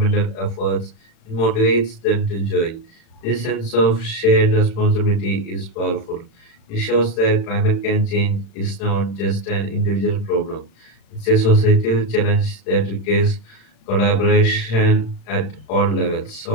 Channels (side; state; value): right; late; 36 ms